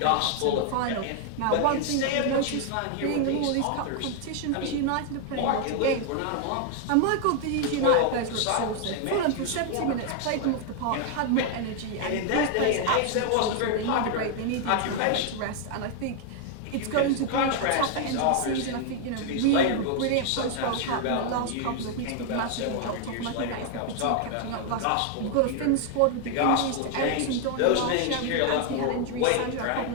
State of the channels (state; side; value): different; both; correlation 0.00